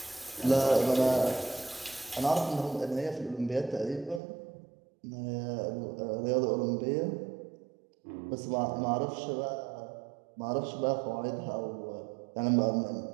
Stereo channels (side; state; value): left; drops out; at 4.2 s